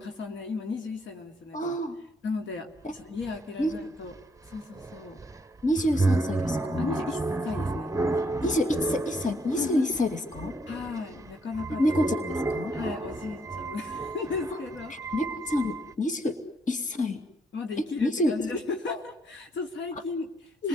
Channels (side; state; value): both; normal; correlation 0.72